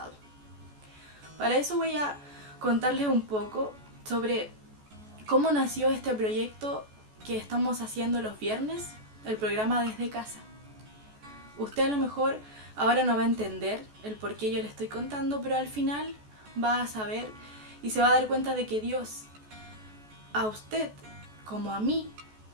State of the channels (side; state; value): left; late; 14 ms